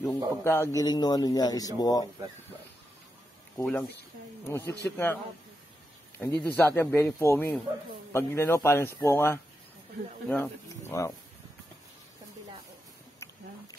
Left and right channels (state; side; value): normal; both; correlation 0.87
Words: Yung pagkakagiling ng niya is buo. Kulang. Siksik nga. Hindi doon sa atin, very foamy. Pag parang sponga. Wow.